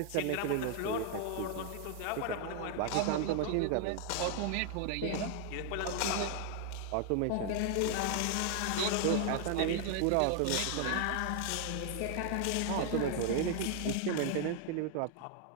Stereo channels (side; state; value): both; different; correlation 0.00